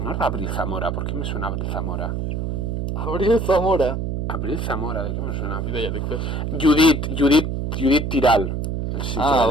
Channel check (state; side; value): noise; right; hum, 2 dB below the sound